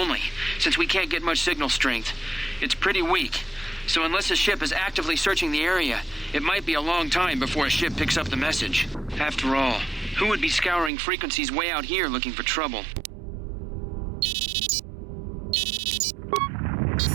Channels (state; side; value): drops out; left; at 10.9 s